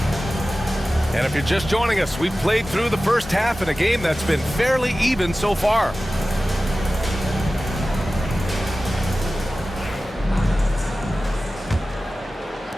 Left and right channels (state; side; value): normal; both; correlation 0.95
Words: And if you're just joining us, we've played through the first half in a game that's been fairly even so far.